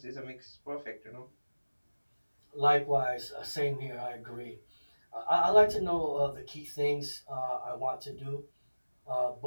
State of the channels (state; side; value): inverted; both; correlation -1.00